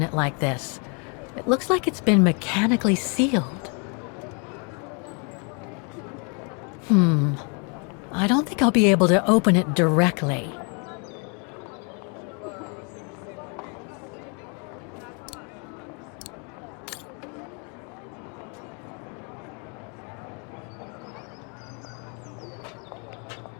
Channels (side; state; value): right; quieter; 35.9 dB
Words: it like this. It looks like it's been mechanically sealed. I don't think I'll be able to open it directly.